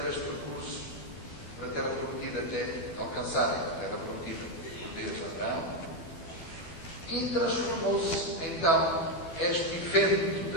este percurso para a terra prometida até alcançarem a terra prometida. Deus a Abraão, e transformou-se então este evento da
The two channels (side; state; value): right; late; 12 ms